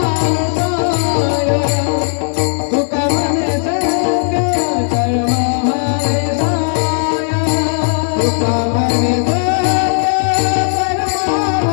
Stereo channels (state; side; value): silent; right; digital silence